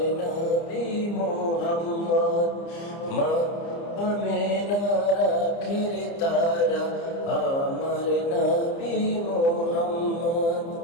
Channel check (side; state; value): right; late; 30 ms